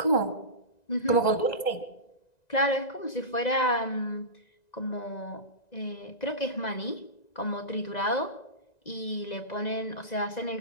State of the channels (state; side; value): late; right; 1.9 ms